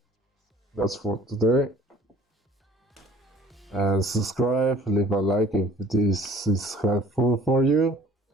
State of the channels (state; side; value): normal; both; correlation 0.52